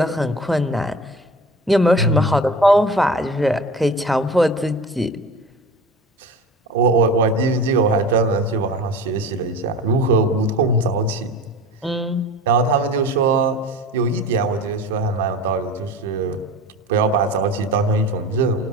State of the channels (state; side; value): normal; both; correlation 0.36